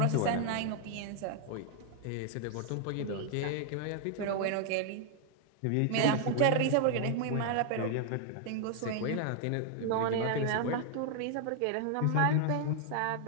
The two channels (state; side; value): different; both; correlation 0.00